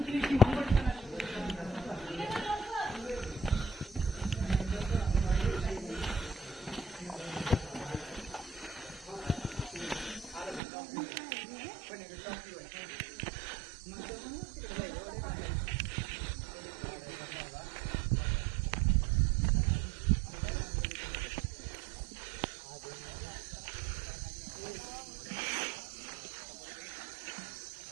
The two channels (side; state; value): left; drops out; at 10.6 s